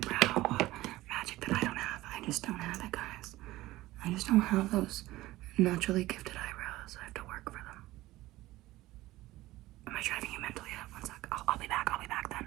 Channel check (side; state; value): left; quieter; 17.4 dB